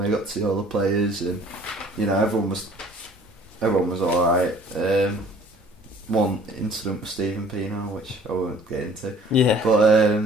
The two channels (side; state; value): both; normal; correlation 0.53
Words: I got to see all the players, and everyone was all right. One incident with Stephen Pino, which I won't get into. Yeah. But